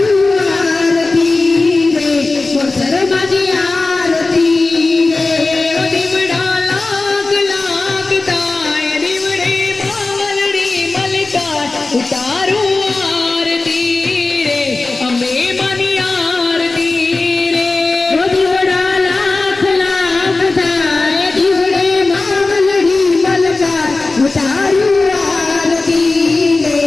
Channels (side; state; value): right; quieter; 3.4 dB